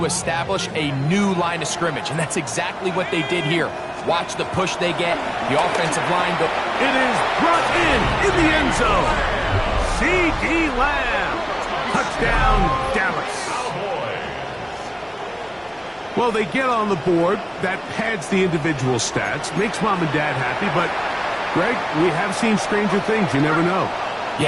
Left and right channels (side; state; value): both; identical; correlation 1.00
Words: establish a new line of scrimmage, and that's exactly what they did here. Watch the push they get, the offensive line go. It is brought in the end zone. C.D. Lamb. Touchdown, Dallas. Well, they get on the board. That pads the individual stats, makes mom and dad happy, but Greg, we have seen stranger things. You never know.